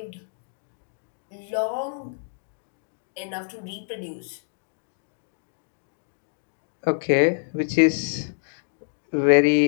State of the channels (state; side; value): silent; right; digital silence